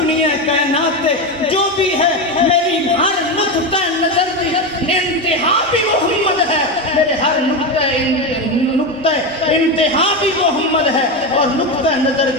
کائنات تے جو بھی ہے میری ہر نقطہ نظر دی انتہا بھی محمد ہے، میرے ہر نقطہ انتہا بھی محمد ہے اور نقطہ نظر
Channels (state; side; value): normal; both; correlation 0.15